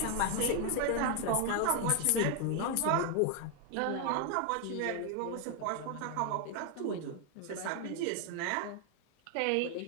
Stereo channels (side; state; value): both; different; correlation 0.00